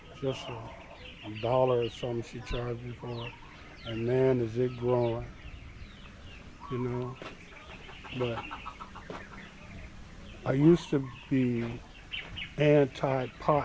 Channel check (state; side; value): identical; both; correlation 1.00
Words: just a dollar or something she charged me for it. And man, is it growing, you know. But I used to be